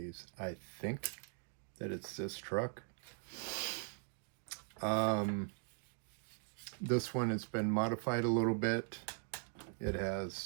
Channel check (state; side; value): silent; left; 51 dB below the other